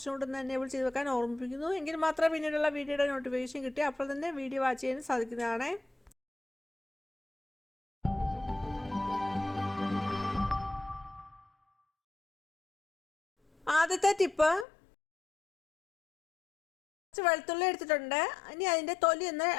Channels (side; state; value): right; drops out; at 14.7 s